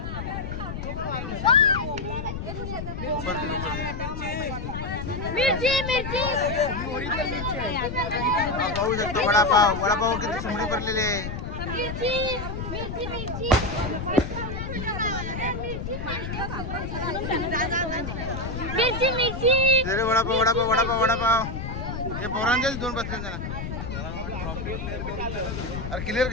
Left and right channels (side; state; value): left; noise; rumble, 6 dB below the sound